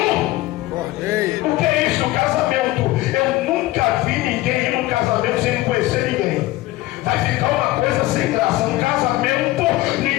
Cordeiro. O que é isso? O casamento. Eu nunca vi ninguém ir num casamento sem conhecer ninguém. Vai ficar uma coisa sem graça. No casamento,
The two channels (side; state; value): right; quieter; 17.7 dB